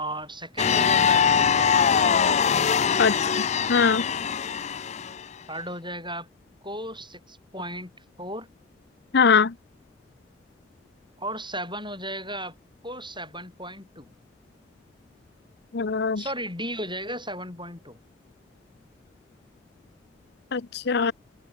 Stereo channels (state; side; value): quieter; right; 5.5 dB